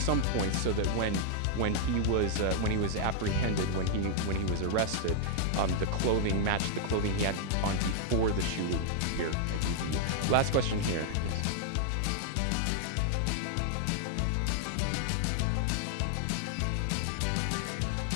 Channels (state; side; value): different; both; correlation 0.00